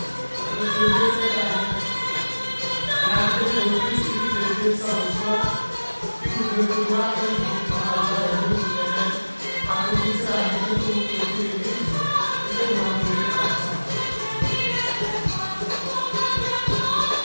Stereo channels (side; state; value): both; inverted; correlation -1.00